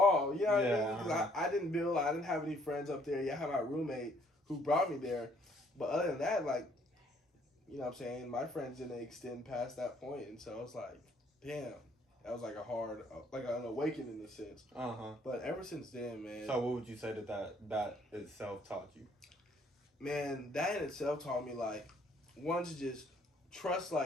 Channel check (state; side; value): normal; both; correlation 0.64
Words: You know what I mean? Because I didn't have any friends up there. Yeah, I had my roommate who brought me there. But other than that, like, you know what I'm saying? My friends didn't extend past that point. And so I was like, damn. That was like a hard, like an awakening in a sense. But ever since then, man. So what would you say that itself taught you? Man, that in itself taught me, like, one, to just trust,